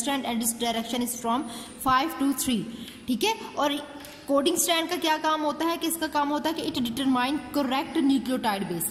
एंड इस डायरेक्शन इज फ्रॉम 5 to 3, ठीक है। और कोडिंग स्ट्रैंड का क्या काम होता है, कि इसका काम होता है कि it determine correct nucleotide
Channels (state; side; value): identical; both; correlation 1.00